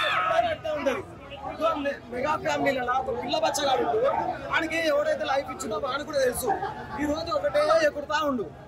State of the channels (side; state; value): both; identical; correlation 1.00